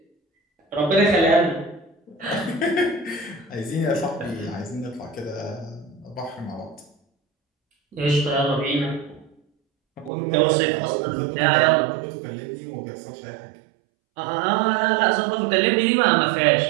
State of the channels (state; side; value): drops out; left; at 10.1 s